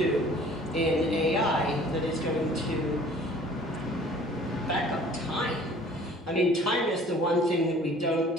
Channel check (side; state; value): both; normal; correlation 0.51